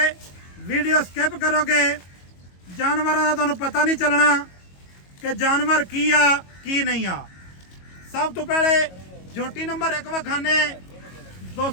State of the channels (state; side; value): late; right; 22 ms